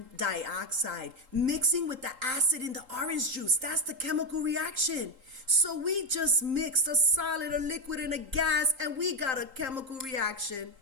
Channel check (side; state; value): left; late; 3.8 ms